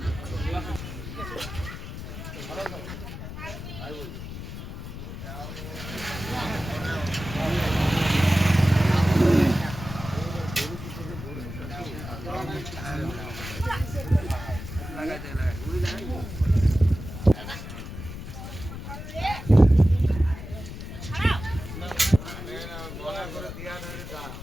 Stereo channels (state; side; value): noise; left; rumble, 10 dB below the sound